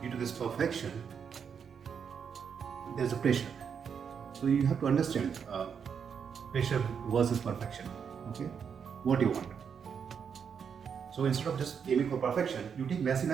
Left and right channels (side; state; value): left; quieter; 7.0 dB